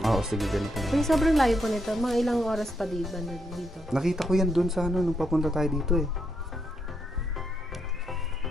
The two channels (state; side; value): normal; both; correlation 0.79